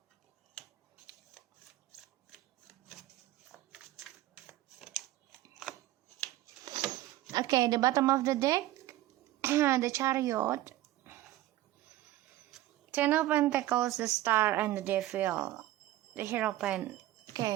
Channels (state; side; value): quieter; left; 15.3 dB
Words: Okay, the bottom of the deck, the Chariot, Ten of Pentacles, the Star, and the Devil. The Hierophant.